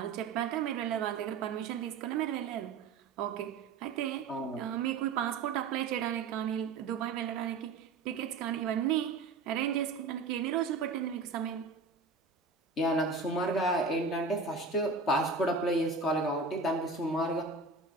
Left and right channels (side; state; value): left; quieter; 4.2 dB